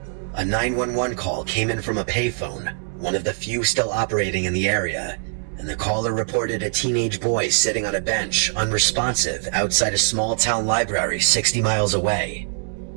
A 911 call came in from a payphone, one of the few still operating in the area, and the caller reported a teenage boy sitting on a bench, unresponsive, outside a small-town library 60 miles away.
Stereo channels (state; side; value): silent; left; digital silence